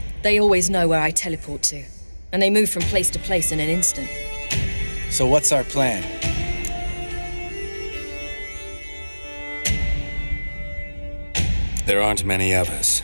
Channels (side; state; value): both; inverted; correlation -1.00